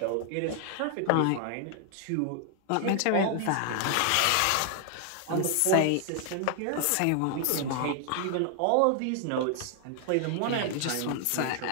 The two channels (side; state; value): both; different; correlation 0.00